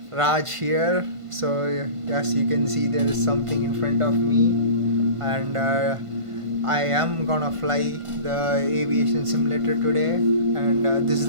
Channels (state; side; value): late; left; 1.5 ms